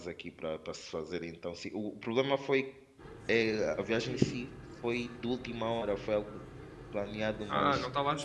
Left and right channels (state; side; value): identical; both; correlation 1.00